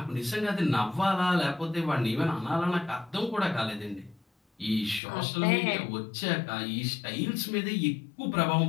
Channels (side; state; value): right; drops out; at 5.0 s